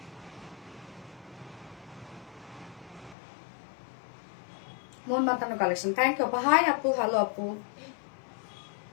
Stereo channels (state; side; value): drops out; right; at 3.2 s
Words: মন মাতানো কালেকশন, থ্যাংক ইউ আপু। হাই আপু, হ্যালো আপু।